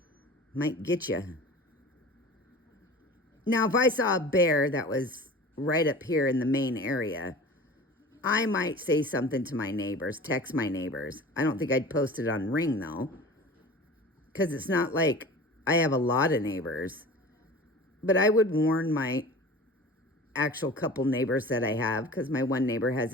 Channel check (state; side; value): normal; both; correlation 0.39